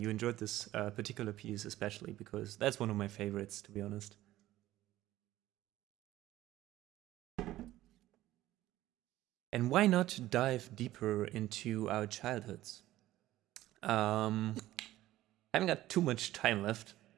enjoyed this particular piece especially because that's one of my favorites, to be honest. And why not dive deeper into our childhoods? Haven't got too much time left.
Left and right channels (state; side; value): quieter; left; 15.2 dB